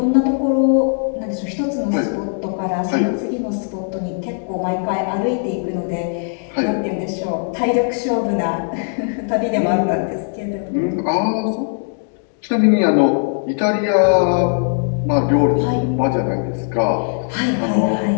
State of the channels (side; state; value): right; silent; 63 dB below the other